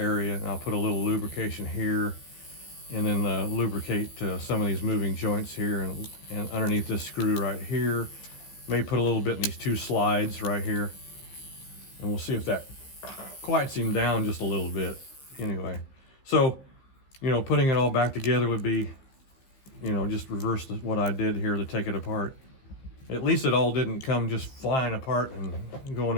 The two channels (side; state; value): right; late; 15 ms